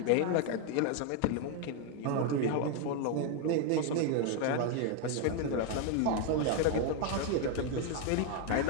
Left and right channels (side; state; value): both; different; correlation 0.01